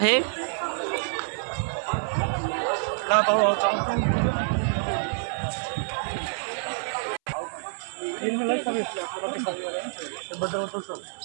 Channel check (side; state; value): left; silent; 60 dB below the other